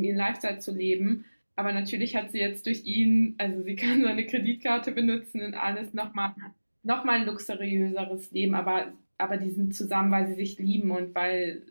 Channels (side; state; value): both; inverted; correlation -1.00